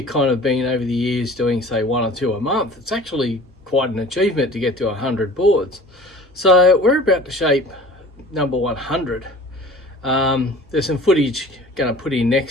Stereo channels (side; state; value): both; normal; correlation 0.44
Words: kind of been over the years doing say 1 or 2 a month, it's actually quite an achievement to get to 100 boards. So we're about to shape number 100. There's some footage going to put in